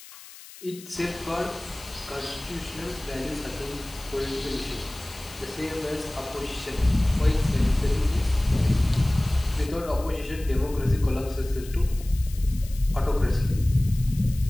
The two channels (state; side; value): noise; left; hiss, 18 dB below the sound